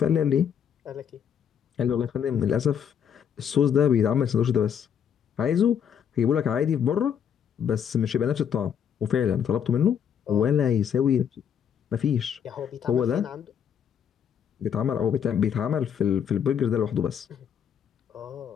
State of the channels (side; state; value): right; quieter; 8.3 dB